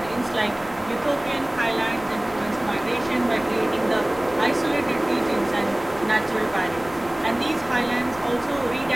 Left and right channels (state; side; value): noise; left; rumble, 19 dB below the sound